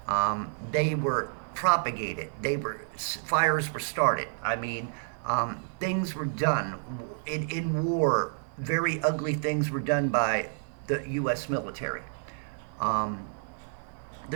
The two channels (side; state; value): left; silent; 58 dB below the other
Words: They were propagated. Fires were started. I mean, things were done in war. Very ugly things were done by the U.S. military. Um,